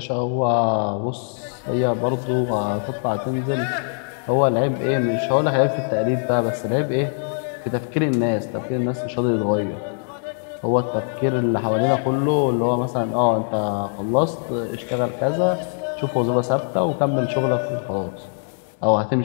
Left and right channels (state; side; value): silent; right; 62 dB below the other